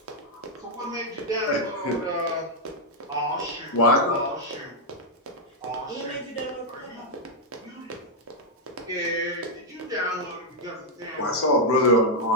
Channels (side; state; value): both; normal; correlation -0.02